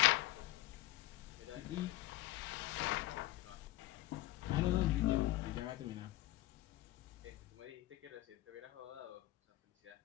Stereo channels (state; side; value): quieter; right; 17.0 dB